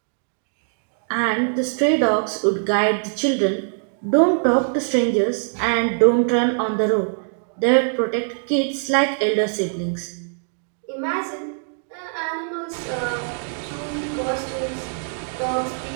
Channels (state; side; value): silent; left; digital silence